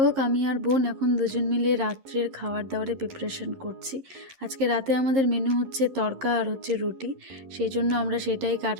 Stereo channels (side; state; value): left; late; 11 ms